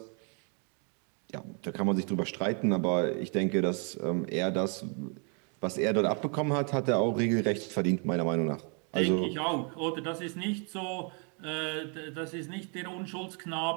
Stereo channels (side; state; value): left; quieter; 39.3 dB